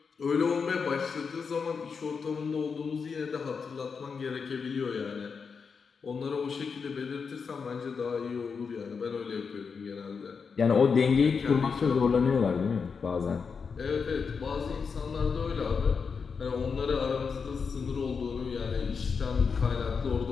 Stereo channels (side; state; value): right; quieter; 5.6 dB